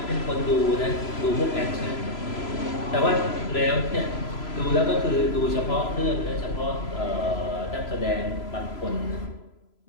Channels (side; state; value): right; late; 3.0 ms